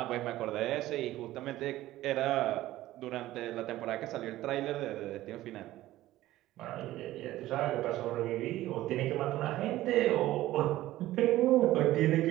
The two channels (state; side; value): quieter; left; 15.5 dB